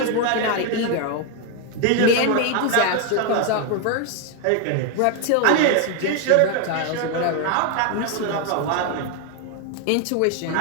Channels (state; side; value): different; both; correlation 0.01